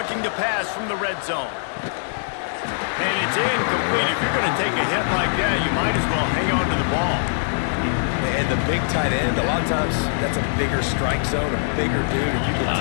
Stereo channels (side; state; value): right; silent; digital silence